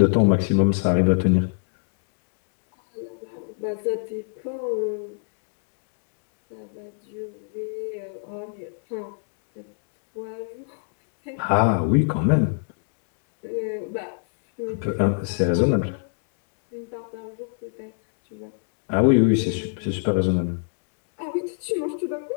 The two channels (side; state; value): right; silent; digital silence